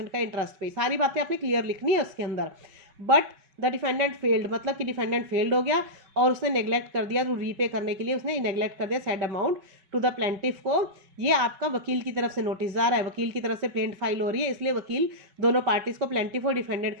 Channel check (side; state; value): left; late; 5.3 ms